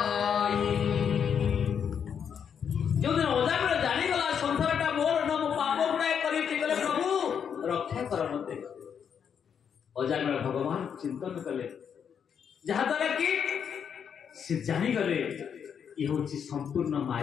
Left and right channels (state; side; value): quieter; right; 7.6 dB